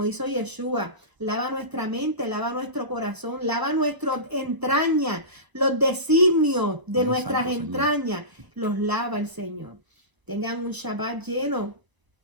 hizo Yeshua. Lava nuestra mente, lava nuestro corazón, lava nuestras entrañas, los designios de nuestras entrañas, los lava el Señor. Tengan un Shabbat lleno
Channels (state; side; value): late; left; 1.0 ms